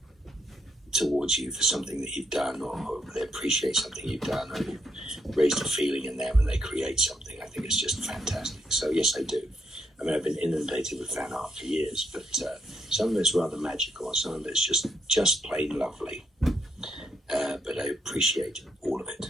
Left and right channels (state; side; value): normal; both; correlation 0.75